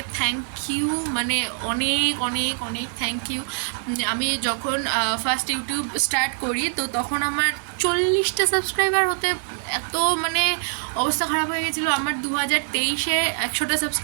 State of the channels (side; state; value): left; silent; 62 dB below the other